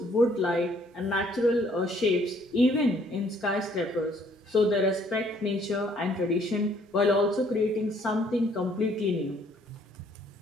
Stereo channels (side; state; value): both; normal; correlation 0.63